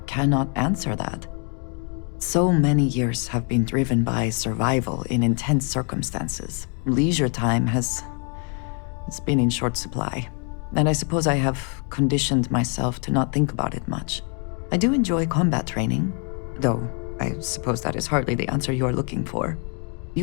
cannot answer that. So many years have been driven by survival in intense circumstances. Leisure time it's been in short supply. And I suppose I have conditioned myself to not think about it much. I do enjoy combat training, though I suppose that is hardly the answer you are looking for.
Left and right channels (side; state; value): right; quieter; 39.6 dB